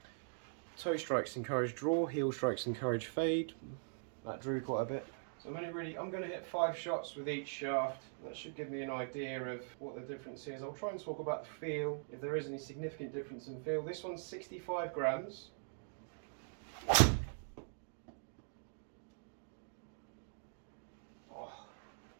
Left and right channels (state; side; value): silent; left; digital silence